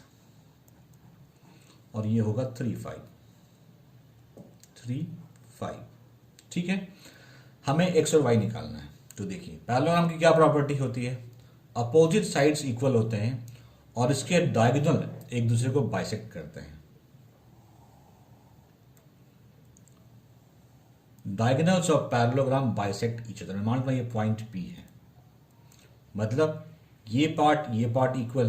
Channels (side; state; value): both; identical; correlation 1.00